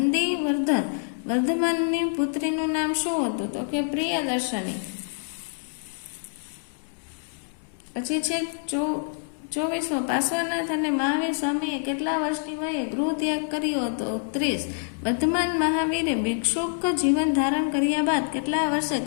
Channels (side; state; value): right; silent; digital silence